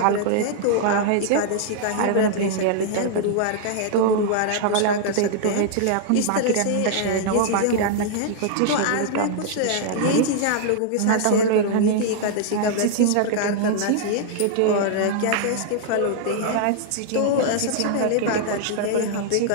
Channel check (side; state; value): both; different; correlation -0.01